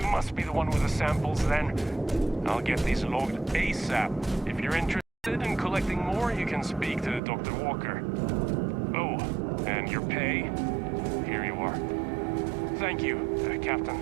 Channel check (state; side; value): drops out; left; at 7.2 s